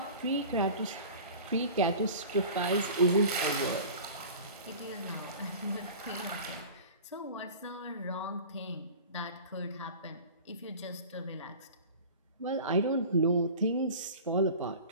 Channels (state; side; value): inverted; both; correlation -0.39